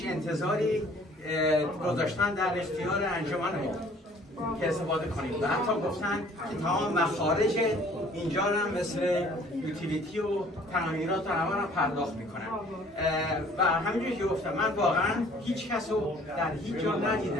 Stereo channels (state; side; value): normal; both; correlation 0.55